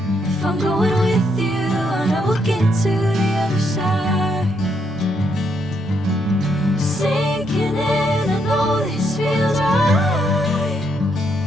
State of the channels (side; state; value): both; normal; correlation 0.75